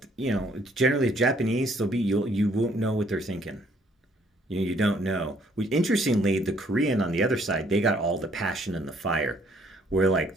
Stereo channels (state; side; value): normal; both; correlation 0.65